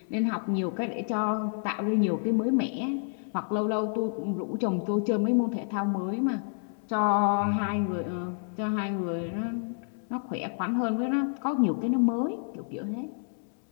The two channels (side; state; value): right; silent; 59 dB below the other